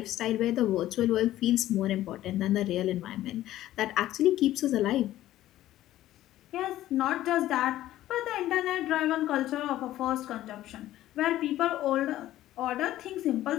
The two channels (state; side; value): quieter; right; 14.1 dB